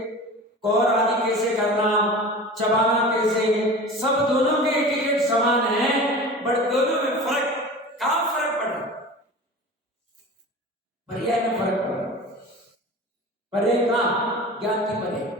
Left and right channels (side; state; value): both; normal; correlation 0.36